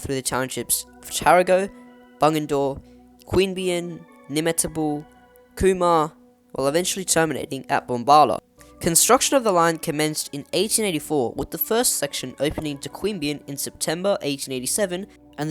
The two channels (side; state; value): both; identical; correlation 1.00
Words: through the townships of Tarago, Bunyan, Queanbeyan, Nimmetabel, Cooma, while eventually terminating at Bombala. Construction of the line commenced in 1884, with the first section opening to Queanbeyan in September 1887 and